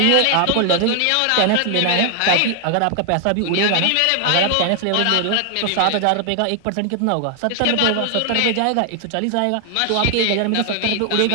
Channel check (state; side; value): different; both; correlation 0.00